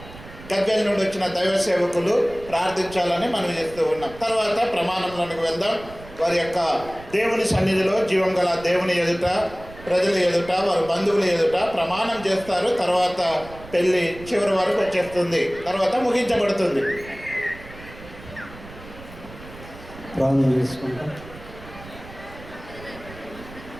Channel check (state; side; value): noise; right; rumble, 17 dB below the sound